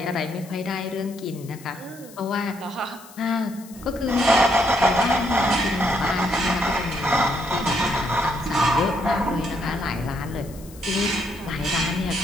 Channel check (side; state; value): left; noise; hiss, 21 dB below the sound